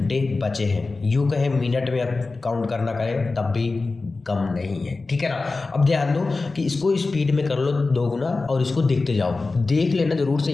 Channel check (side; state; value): right; quieter; 3.7 dB